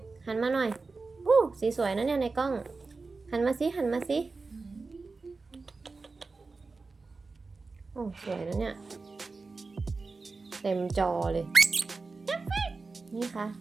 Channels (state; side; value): quieter; left; 4.0 dB